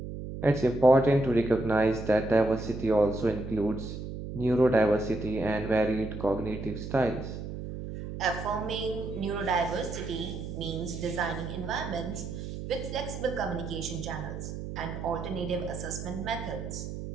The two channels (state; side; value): noise; right; hum, 8 dB below the sound